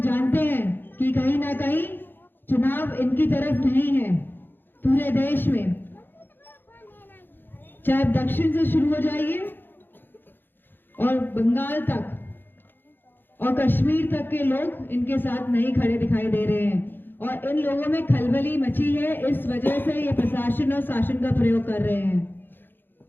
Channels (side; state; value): right; late; 0.097 ms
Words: जानते हैं कि कहीं ना कहीं चुनाव इनकी तरफ नहीं है। पूरे देश में, चाहे दक्षिण से शुरू हो जाइए और बंगाल तक और कश्मीर तक के लोग इनके साथ नहीं खड़े दिखाई दे रहे हैं, और इन लोगों में खलबली मची है। इस वजह से ये प्रशासन और शासन का प्रयोग कर रहे हैं।